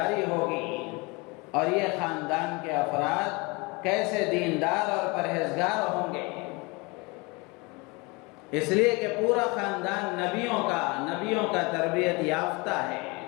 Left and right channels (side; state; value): right; quieter; 27.0 dB